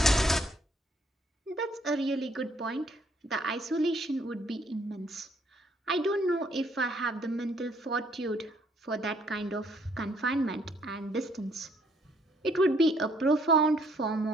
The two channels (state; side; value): normal; both; correlation 0.66